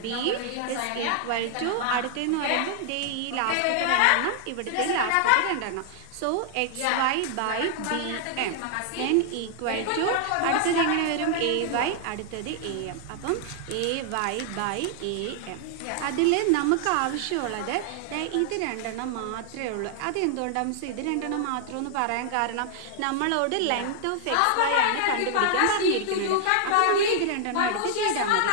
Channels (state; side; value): different; both; correlation 0.00